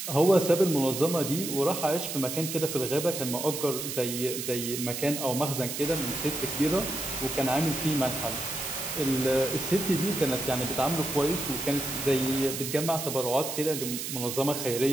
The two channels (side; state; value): right; noise; hiss, 5 dB below the sound